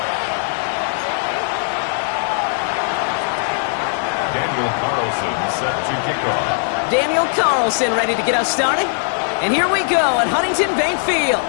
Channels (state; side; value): silent; right; 67 dB below the other